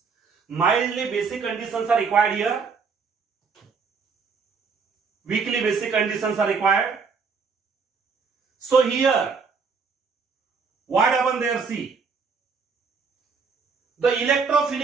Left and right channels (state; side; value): quieter; left; 5.3 dB